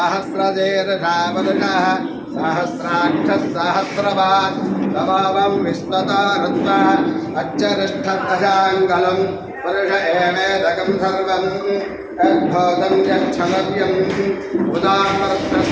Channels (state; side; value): identical; both; correlation 1.00